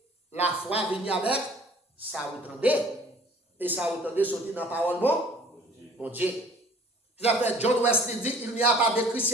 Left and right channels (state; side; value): normal; both; correlation 0.51